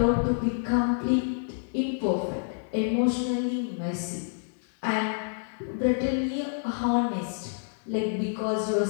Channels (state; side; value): silent; right; 59 dB below the other